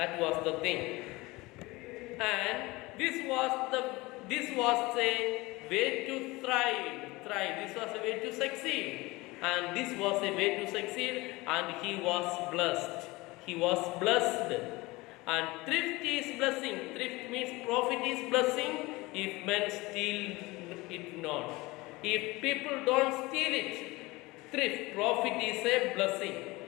was the thing. And this was a way to thrive. This was a way to succeed. And this was a way to succeed, and he was blessed. He was blessed. And thrift is blessing. Thrift means profit is blessing if men steal it not. If people don't steal it, thrift, profit is a blessing.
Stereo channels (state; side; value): quieter; right; 21.9 dB